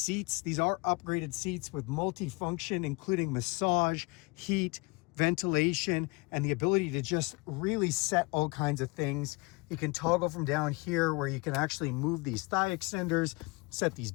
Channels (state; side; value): quieter; right; 26.9 dB